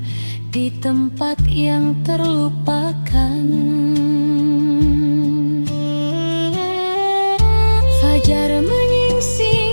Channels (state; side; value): inverted; both; correlation -1.00